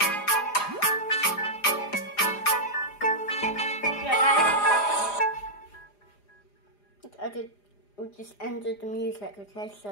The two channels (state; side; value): late; right; 4.9 ms